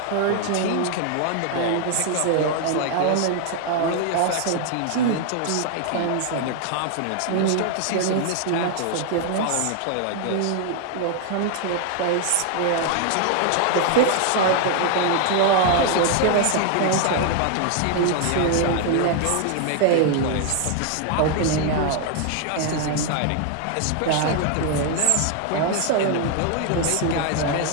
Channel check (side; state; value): both; different; correlation 0.00